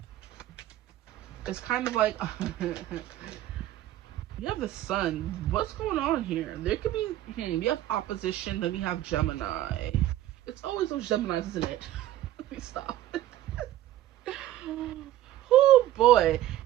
It's kind of like you have the sun. What's going on here? There could be we have opposition, then we have Gemini. It's always those Geminis, isn't it? Let me stop. Oh boy.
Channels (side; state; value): left; quieter; 13.8 dB